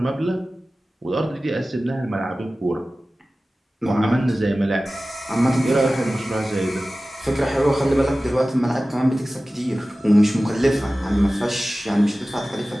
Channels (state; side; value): normal; both; correlation 0.96